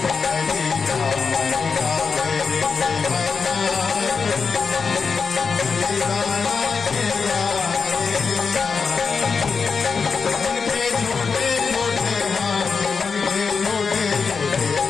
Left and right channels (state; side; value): quieter; right; 5.3 dB